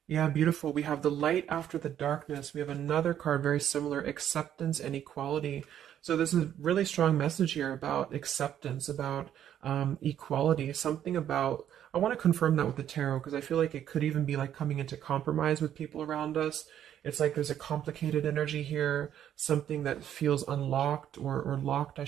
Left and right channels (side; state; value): left; quieter; 10.4 dB